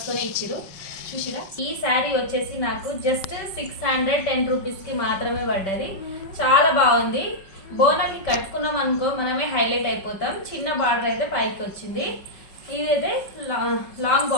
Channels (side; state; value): right; late; 5.4 ms